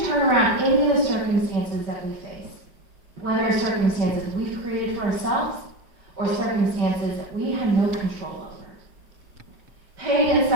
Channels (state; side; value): late; left; 5.2 ms